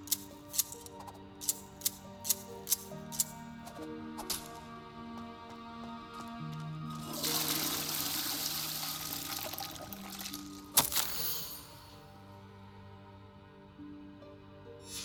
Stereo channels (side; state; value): both; identical; correlation 1.00